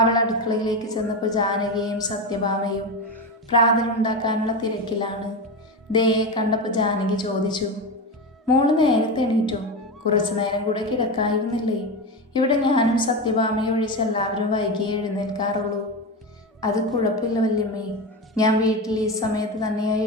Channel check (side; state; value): both; normal; correlation 0.18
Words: അവൾ അടുക്കളയിലേക്ക് ചെന്നപ്പോൾ ജാനകിയും സത്യഭാമയും പ്രാതലുണ്ടാക്കാനുള്ള തിരക്കിലാണ്. ദയയെ കണ്ടപ്പോൾ ജാനകി ചോദിച്ചു, മോള് നേരത്തെ എണീറ്റോ? കുറച്ചു നേരം കൂടെ കിടക്കായിരുന്നില്ലേ? ഇവിടെ ഞാനും സത്യഭാമയും ഒഴിച്ച് എല്ലാവരും വൈകിയേ എഴുന്നേൽക്കാറുള്ളൂ. അത് കുഴപ്പമില്ല വല്യമ്മേ, ഞാൻ വീട്ടിൽ ഈ സമയത്ത് തന്നെയായി